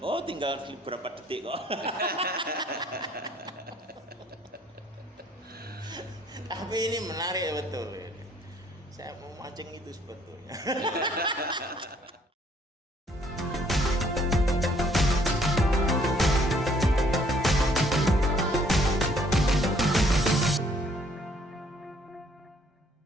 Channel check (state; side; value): normal; both; correlation 0.63